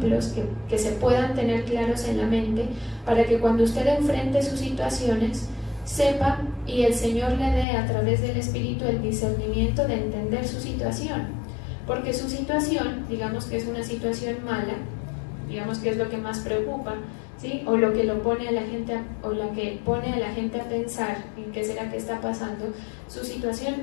que se puedan tener claros en la mente, para que cuando usted enfrente sus situaciones, sepa y el Señor le dé a través del Espíritu el discernimiento de entender su situación, porque su situación, digamos que es una situación mala, digamos que es lo que más preocupa, ¿sí? O lo que lo pone a la gente o la que pone a la gente a pensar en qué será que está pasando. Su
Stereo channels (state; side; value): drops out; right; at 7.7 s